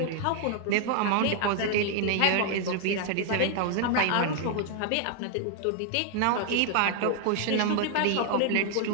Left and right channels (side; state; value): both; different; correlation 0.00